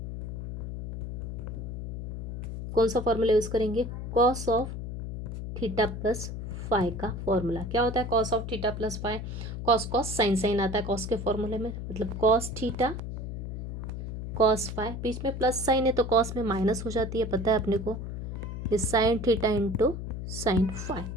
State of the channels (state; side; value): noise; left; hum, 6 dB below the sound